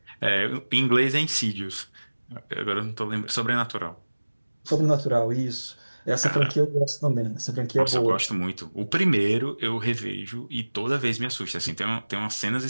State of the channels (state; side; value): inverted; both; correlation -1.00